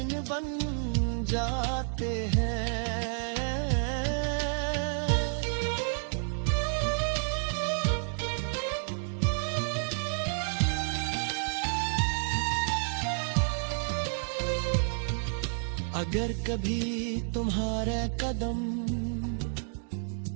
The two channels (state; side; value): silent; left; 58 dB below the other